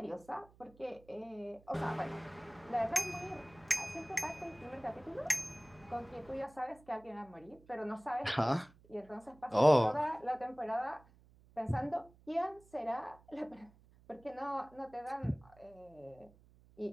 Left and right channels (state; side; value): noise; right; hum, 26 dB below the sound